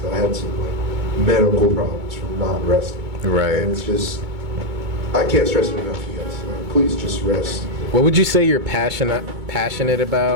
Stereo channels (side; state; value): left; late; 2.2 ms